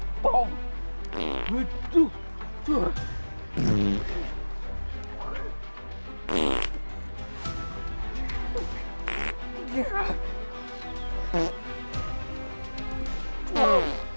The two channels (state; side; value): inverted; both; correlation -1.00